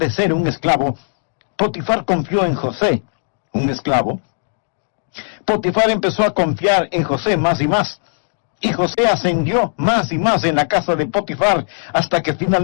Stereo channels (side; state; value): right; silent; digital silence